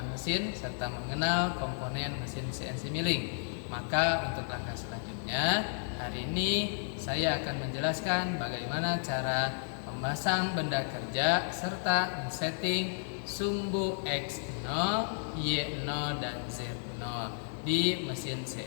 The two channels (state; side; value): silent; right; digital silence